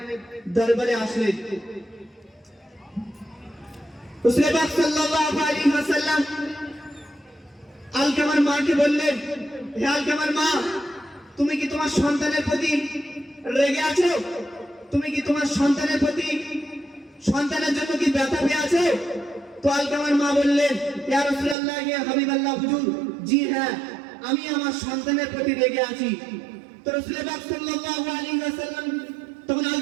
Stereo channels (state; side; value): drops out; left; at 21.6 s